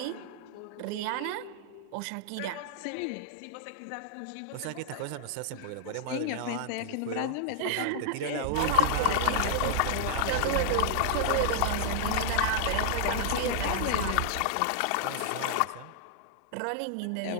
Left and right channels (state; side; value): different; both; correlation -0.02